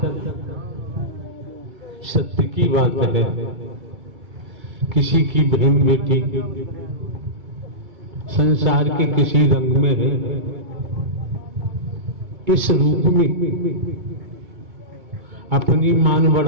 सत्य की बात है, किसी की बहन बेटी संसार के किसी रंग में है, इस रूप में अपनी मान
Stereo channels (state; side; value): late; left; 2.3 ms